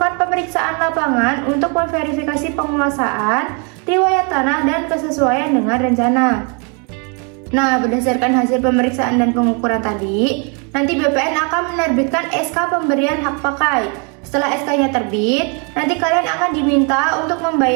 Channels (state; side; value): quieter; left; 35.9 dB